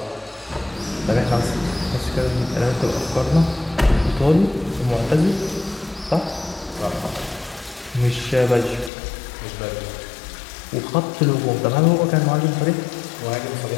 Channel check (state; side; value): drops out; right; at 8.9 s